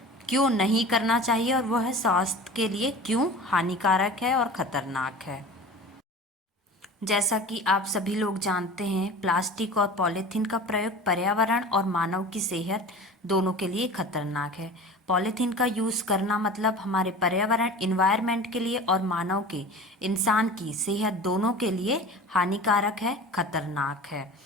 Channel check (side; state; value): both; normal; correlation 0.37